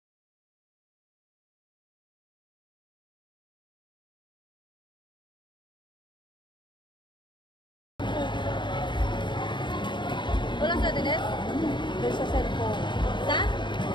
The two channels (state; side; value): late; right; 0.22 ms